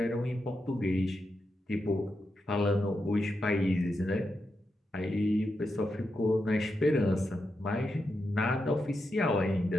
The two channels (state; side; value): normal; both; correlation 0.86